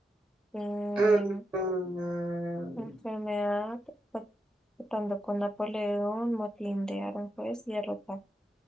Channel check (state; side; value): normal; both; correlation 0.86